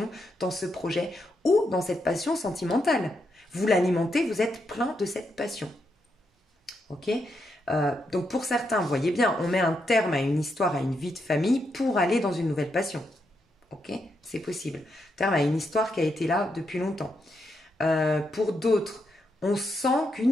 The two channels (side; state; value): both; normal; correlation 0.82